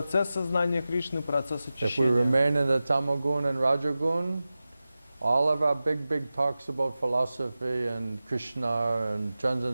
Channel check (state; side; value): inverted; both; correlation -0.95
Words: сознания Кришны, процесс If we очищения. remain in the Tamagun and Rajagun, all of our big talks about philosophy and Krishna and